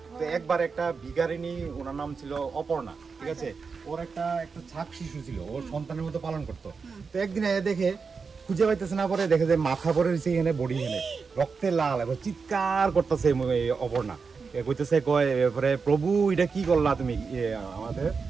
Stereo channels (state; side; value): quieter; left; 5.1 dB